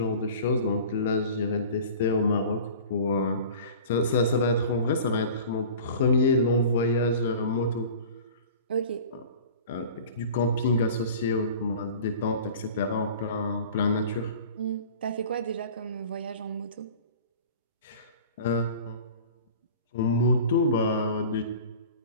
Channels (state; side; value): inverted; both; correlation -0.41